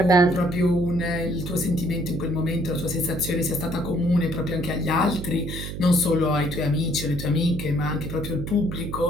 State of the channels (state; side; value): noise; right; hum, 7 dB below the sound